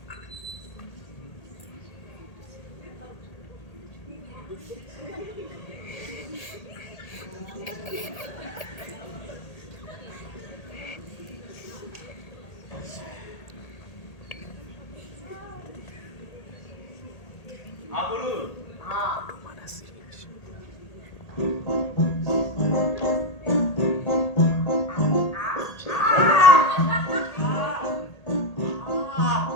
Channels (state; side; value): late; right; 1.8 ms